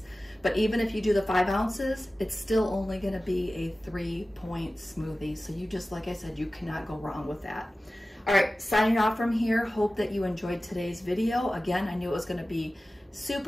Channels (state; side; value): normal; both; correlation 0.96